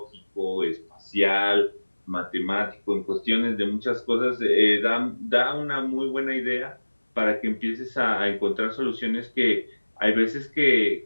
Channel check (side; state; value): both; inverted; correlation -1.00